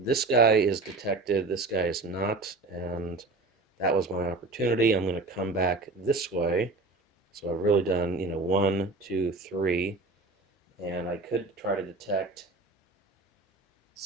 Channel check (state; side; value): quieter; left; 3.5 dB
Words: guy is detected, this guy is not, and that was my opportunity. I'm going to come back this way. So I've really done, 1, 2, 3, and I could try to detect